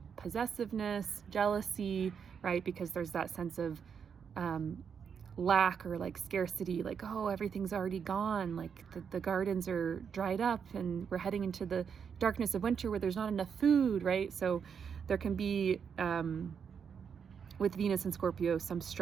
possessiveness, jealousy, right? Because there's that sense of lack or like scarcity, like, oh, everything's already gone. Like the gardens are dried up and we're heading into the darkness of winter where there's not enough food, right? So there can be, with Venus and Scorpio, some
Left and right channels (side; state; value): left; quieter; 6.9 dB